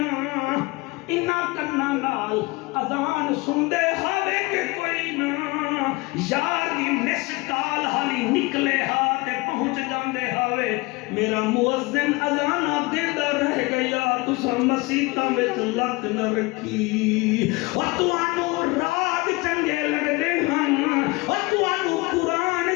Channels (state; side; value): quieter; right; 24.2 dB